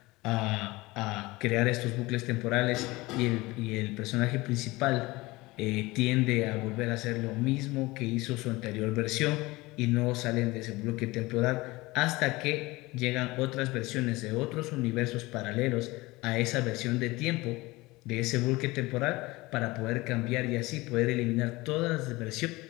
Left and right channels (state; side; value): quieter; right; 21.3 dB